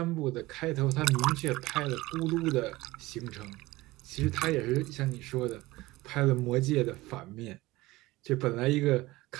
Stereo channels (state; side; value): quieter; left; 19.6 dB